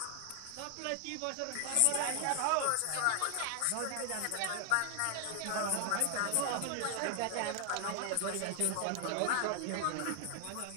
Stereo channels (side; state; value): both; different; correlation 0.00